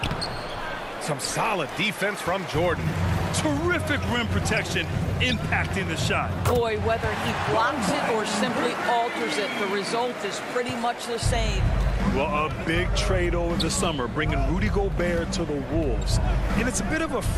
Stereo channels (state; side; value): identical; both; correlation 1.00